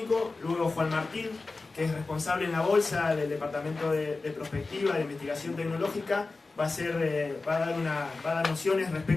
luego Juan Martín, que es responsable en la bolsa del Departamento de Prospectiva, de Investigación Tecnológica, va a dar nociones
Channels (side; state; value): right; quieter; 3.7 dB